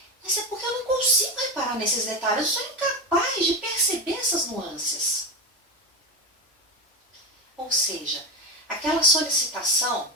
mas é porque eu não consigo reparar nesses detalhes, eu sou incapaz de perceber essas nuances. Ou seja, aquela solicitação,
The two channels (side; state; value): both; normal; correlation 0.16